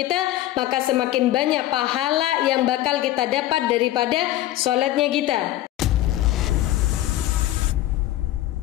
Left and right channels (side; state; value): right; quieter; 14.7 dB